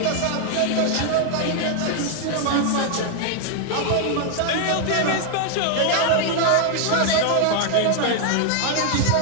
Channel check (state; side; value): different; both; correlation 0.00